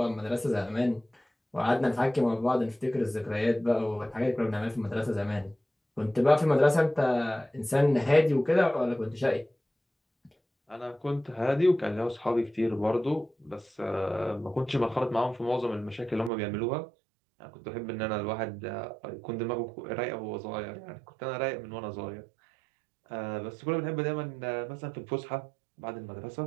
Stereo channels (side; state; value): left; drops out; at 16.3 s